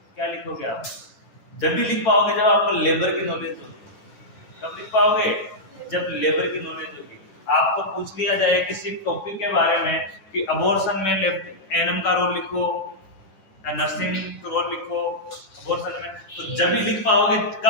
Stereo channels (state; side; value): late; right; 10 ms